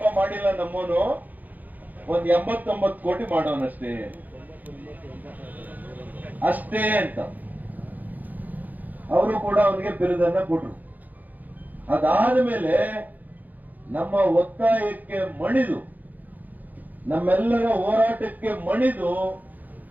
ಮಾಡಿಲ್ಲ ನಮ್ಮವನು, ಒಂದ್ 89 ಕೋಟಿ ಮಾಡೋನಷ್ಟೇ ಅಷ್ಟೇ ಅಂತ ಅವರು ಕೂಡ ಅವನಿಗೆ ಬಿರುದನ್ನ ಕೊಟ್ರು. ಅದಾದ ಮೇಲೆ ನಮ್ಮ ಒತ್ತಾಯಕ್ಕೆ ಮಣಿದು, ನಮ್ಮೆಲ್ಲರ ಹೋರಾಟಕ್ಕೆ ಮಣಿದು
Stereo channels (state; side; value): late; left; 0.082 ms